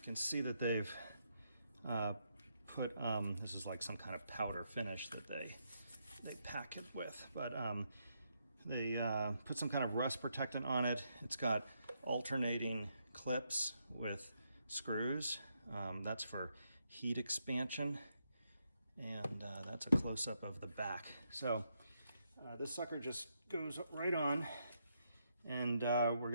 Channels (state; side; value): inverted; both; correlation -0.79